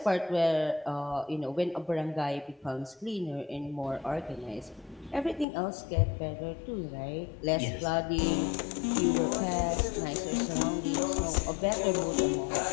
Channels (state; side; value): drops out; right; at 5.5 s